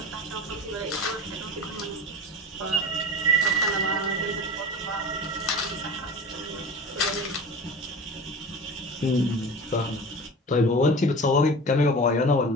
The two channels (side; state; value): both; normal; correlation 0.33